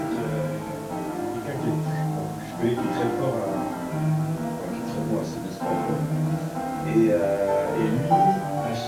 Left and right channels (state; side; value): identical; both; correlation 1.00